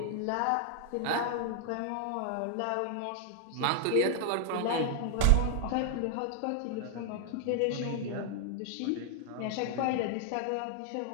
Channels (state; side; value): different; both; correlation 0.00